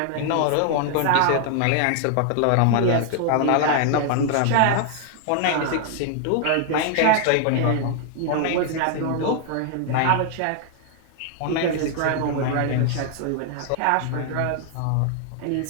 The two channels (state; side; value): different; both; correlation 0.00